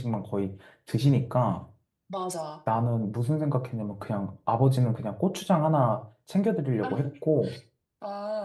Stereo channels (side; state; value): both; identical; correlation 1.00